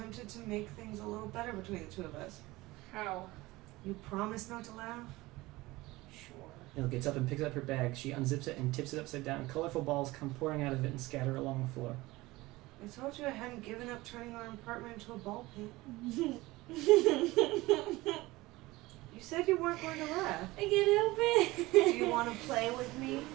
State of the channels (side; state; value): left; quieter; 20.0 dB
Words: to make things a little better between the two of us. How? You promise not to laugh? Sure. Nil gets up and picks up her bag. She unzips it and tips it upside down. Colorful balls come pouring out of it and scatter along the floor. I told you I hadn't given up turning our apartment into a ball pit. You said you weren't going to laugh. I can't help it. Do you want to play with me?